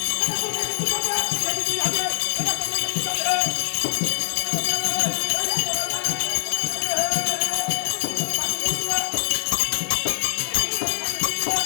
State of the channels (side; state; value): right; silent; 60 dB below the other